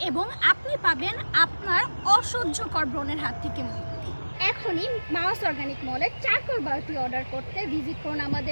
এবং আপনি পাবেন আপনার অসহ্যকর ব্রণের হাত থেকে মুক্তি। এখনই মাউস অর্গানিক মলের চারকোল বারটি অর্ডার করতে ভিজিট করুন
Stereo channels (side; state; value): both; inverted; correlation -1.00